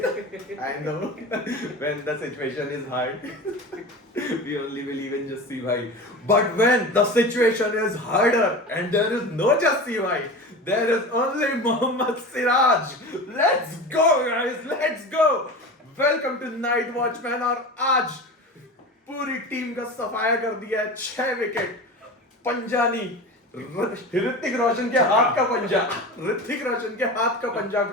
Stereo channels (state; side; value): normal; both; correlation 0.31